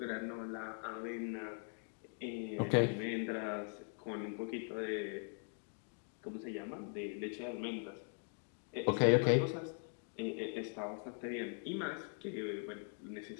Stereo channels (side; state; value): right; silent; 50 dB below the other